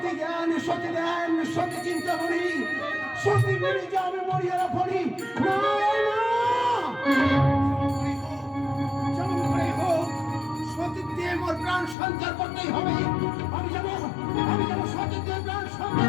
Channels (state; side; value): drops out; right; at 12.0 s